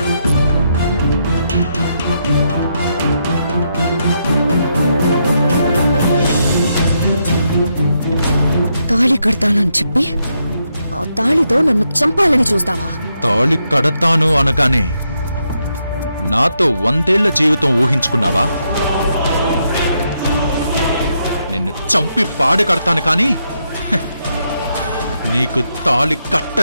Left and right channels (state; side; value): inverted; both; correlation -0.80